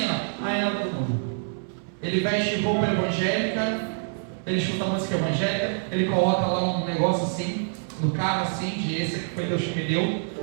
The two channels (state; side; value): silent; left; 61 dB below the other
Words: ainda é do mundo. Ele veste roupa evangélica, ele escuta música evangélica, ele coloca lá um negócio assim, no carro assim, de esse que foi Deus que me deu,